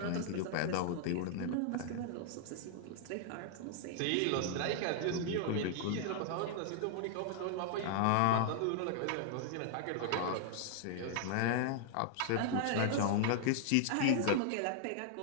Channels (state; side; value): different; both; correlation -0.01